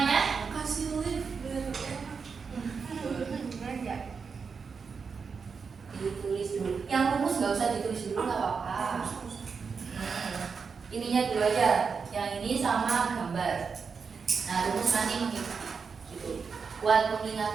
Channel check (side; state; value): left; quieter; 5.5 dB